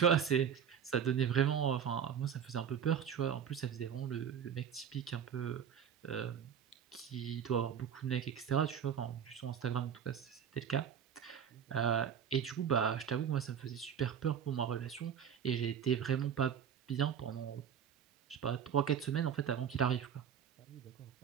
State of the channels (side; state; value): left; quieter; 8.2 dB